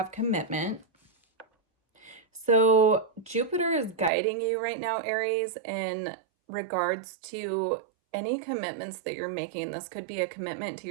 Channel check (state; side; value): drops out; left; at 4.1 s